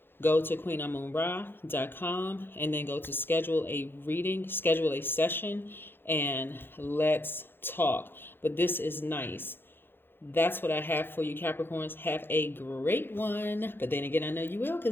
go to queenamunra.com and then go to schedule a reading, schedule a session, and let's talk. But this is nice. That's what I have for you, Capricorns. Have a great one. But then again, I know you will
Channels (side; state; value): right; late; 0.10 ms